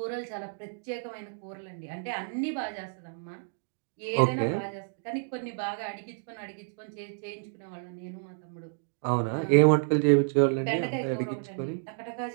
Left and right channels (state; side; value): silent; left; digital silence